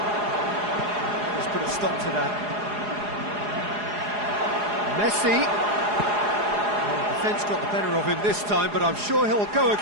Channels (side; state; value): left; late; 4.8 ms